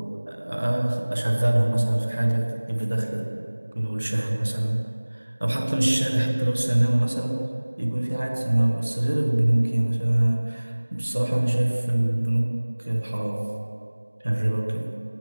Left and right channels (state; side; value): inverted; both; correlation -1.00